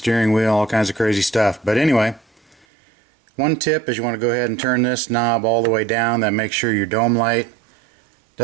wheel, all kinds of crazy stuff. But anyway, one tip is you want to go ahead and turn this knob all the way down. That makes sure your dome light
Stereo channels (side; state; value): left; drops out; at 2.7 s